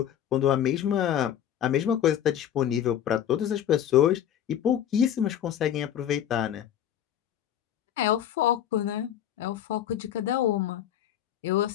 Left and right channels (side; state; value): right; quieter; 10.3 dB